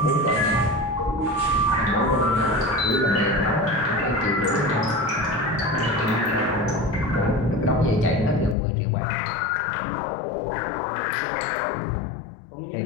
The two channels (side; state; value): right; drops out; at 8.6 s